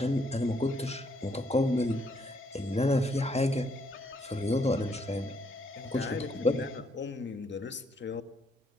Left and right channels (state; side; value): normal; both; correlation 0.72